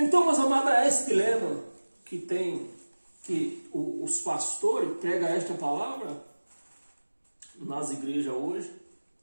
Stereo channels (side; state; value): both; inverted; correlation -1.00